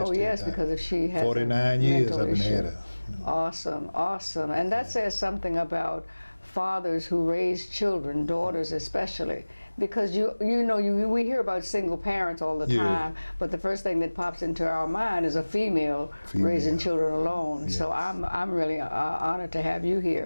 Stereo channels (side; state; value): both; inverted; correlation -1.00